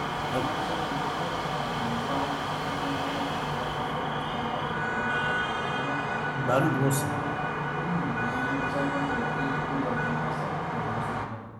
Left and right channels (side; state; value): both; identical; correlation 1.00